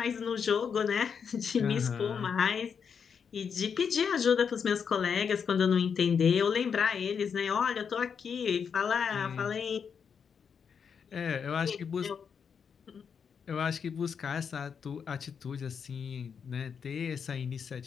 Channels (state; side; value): quieter; right; 6.7 dB